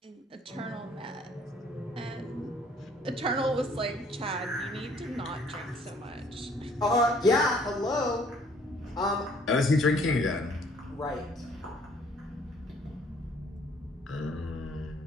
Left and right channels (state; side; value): normal; both; correlation 0.59